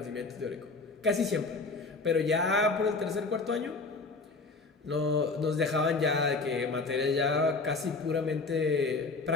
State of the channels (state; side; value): quieter; right; 3.8 dB